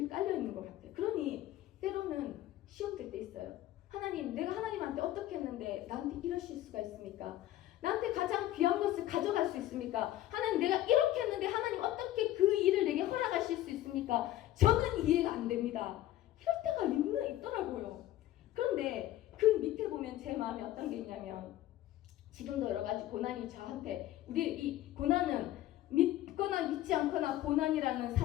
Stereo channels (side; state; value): right; quieter; 14.2 dB